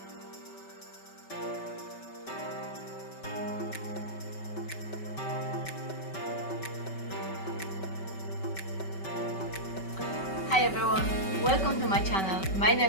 Hi everyone, welcome to my channel. My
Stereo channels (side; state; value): right; late; 5.2 ms